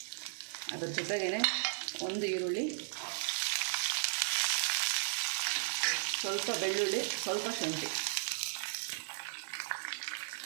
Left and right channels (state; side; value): silent; left; 54 dB below the other